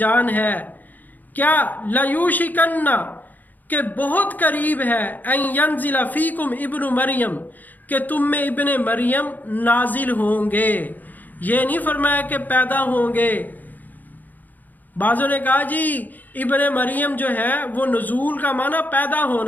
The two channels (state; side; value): late; right; 0.084 ms